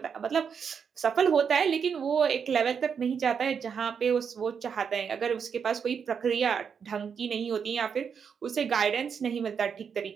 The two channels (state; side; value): quieter; left; 6.8 dB